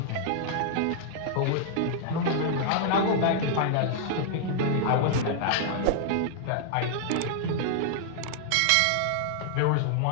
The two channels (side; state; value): both; different; correlation -0.01